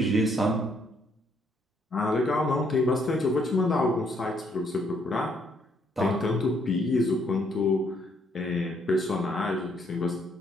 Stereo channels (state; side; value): normal; both; correlation 0.70